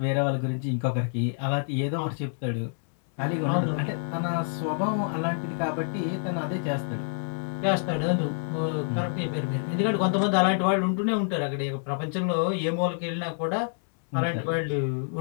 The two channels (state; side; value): silent; right; 60 dB below the other